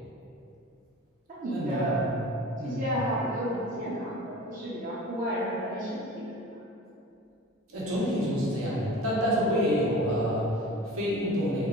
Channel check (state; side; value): normal; both; correlation 0.39